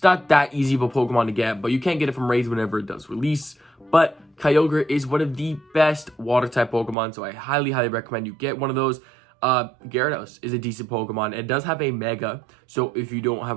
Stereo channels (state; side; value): drops out; left; at 7.0 s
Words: not that easy of a Pokemon to get, but you can get it from raids whenever it does release. But Kyogre is one of the best water type Pokemon, so I highly recommend you get one of those. Gyarados is a decent Pokemon. It does have a Mega, so if you don't